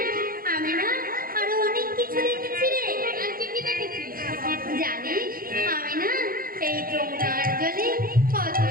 আমি না আরো অনেক কিছু দেখেছি রে। আর কি কি দেখেছিস? জানিস আমি না এই যমুনার জলে কত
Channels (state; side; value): late; left; 0.42 ms